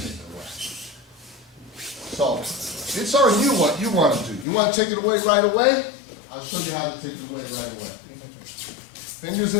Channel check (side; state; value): right; drops out; at 4.5 s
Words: So, it's on you what you want to do. You want to take it away right away? I'll show you how to take it away right away. Fingers